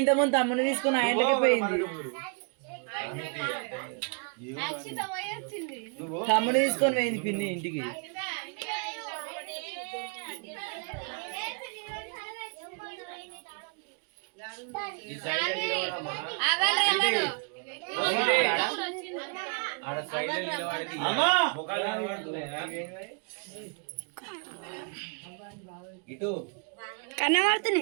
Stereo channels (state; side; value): quieter; left; 38.6 dB